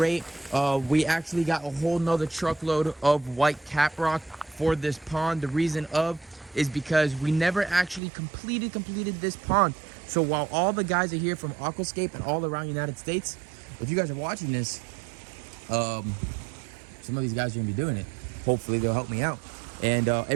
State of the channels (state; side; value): drops out; left; at 8.0 s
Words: We actually got a whole nother truckload of white caprock for this pond. The reason is because we never actually completed this pond. So while all the guys are here from Aquascape and all around the United States, if you guys are watching this, some of these guys are gonna be doing it. Hopefully they'll help me out. And